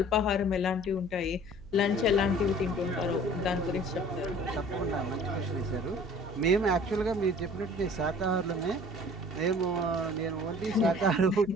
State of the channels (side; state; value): right; noise; hum, 18 dB below the sound